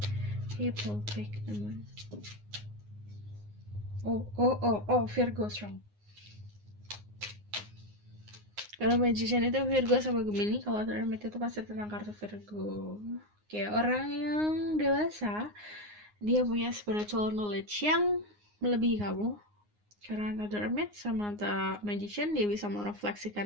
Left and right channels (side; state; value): left; late; 9.6 ms